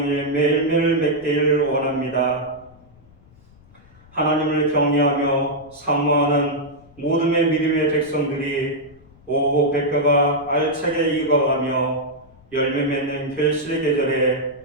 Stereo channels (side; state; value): left; noise; rumble, 27 dB below the sound